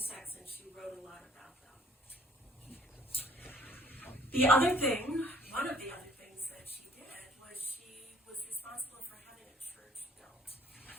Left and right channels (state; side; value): normal; both; correlation 0.59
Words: and she wrote a lot about them. One of the other things that she did was she was responsible for having a church built